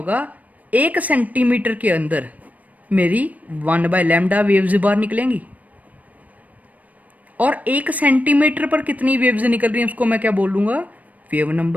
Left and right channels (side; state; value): left; late; 0.073 ms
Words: 1 सेंटीमीटर के अंदर मेरी 1/λ वेव्स बाहर निकलेंगी। और 1 सेंटीमीटर पर कितनी वेव्स निकल रही हैं उसको मैं क्या बोलूँगा, वेव